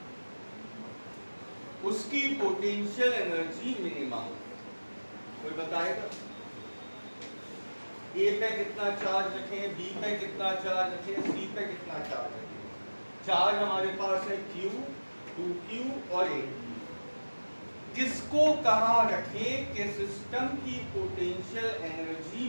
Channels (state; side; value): inverted; both; correlation -1.00